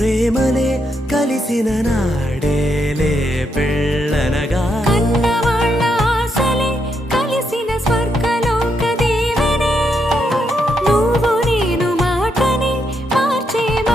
కలిసిన నాడేలే పెళ్ళనగా కన్నవాళ్ళ ఆశలే కలిసిన స్వర్గలోక దీవెనే నువ్వు నేను మాటని మార్చే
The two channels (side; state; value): both; normal; correlation 0.79